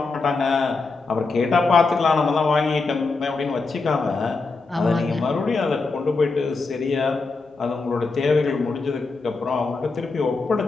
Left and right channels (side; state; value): right; quieter; 4.0 dB